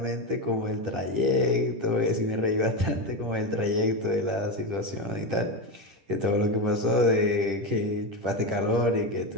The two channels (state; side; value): late; left; 10 ms